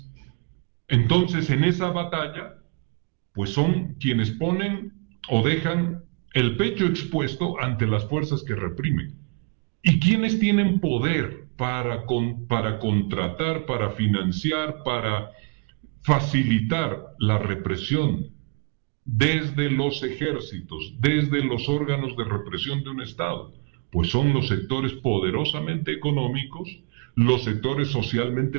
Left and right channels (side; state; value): left; quieter; 34.5 dB